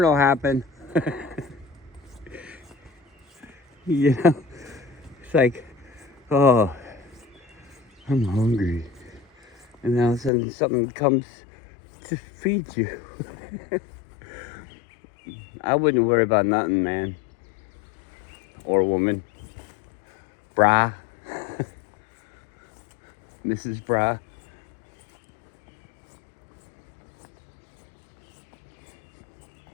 will happen. You know? It's like, oh, I'm hungry. And then all of a sudden something comes to feed you. I wouldn't worry about nothing, man. Or woman. Brah. Mrs. Brah.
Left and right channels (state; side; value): drops out; right; at 10.3 s